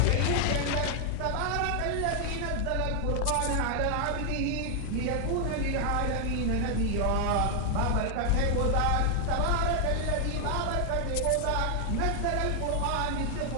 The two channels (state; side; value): different; both; correlation 0.00